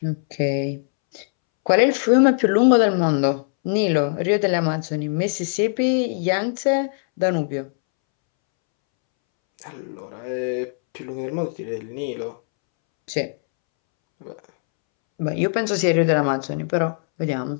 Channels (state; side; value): silent; right; 65 dB below the other